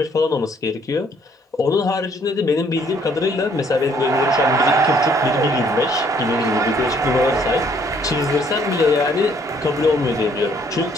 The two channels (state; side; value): normal; both; correlation 0.64